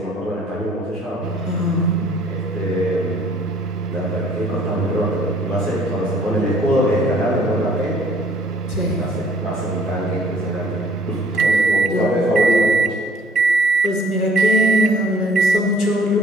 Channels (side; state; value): both; normal; correlation 0.58